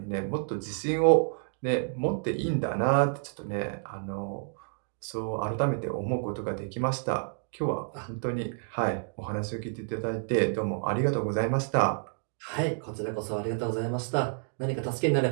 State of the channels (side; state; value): left; silent; 58 dB below the other